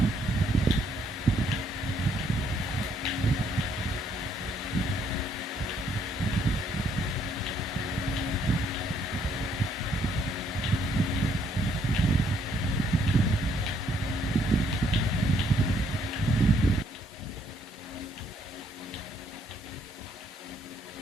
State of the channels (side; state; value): both; normal; correlation 0.69